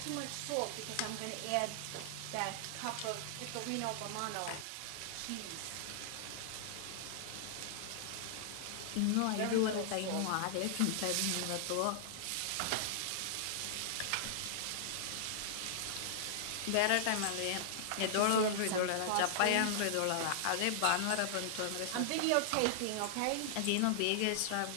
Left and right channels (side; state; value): both; different; correlation -0.01